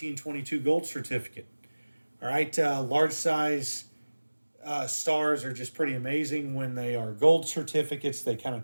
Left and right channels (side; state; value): both; inverted; correlation -1.00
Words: gold certificate. All right, large size stars are just pretty amazing. When they are gold certificates, they kind of